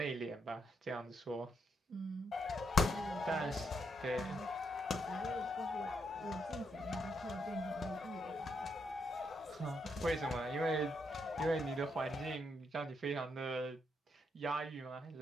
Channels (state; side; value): normal; both; correlation 0.78